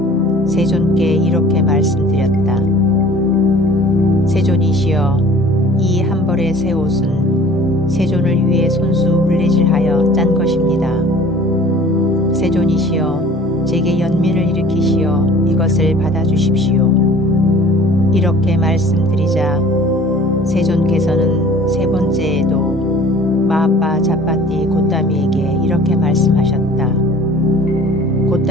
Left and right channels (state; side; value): normal; both; correlation 0.48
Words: 세존께 이렇게 말씀드렸다. 세존이시여, 이 한 벌의 새 옷은 세존을 위해 손수 물레질하여 짠 것입니다. 세존이시여, 제게 연민을 일으키시어 이것을 받아주십시오. 이렇게 말씀드리자 세존께서는 세 번째에도 마아빠 자빠띠 고따미에게 이렇게 말씀하셨다.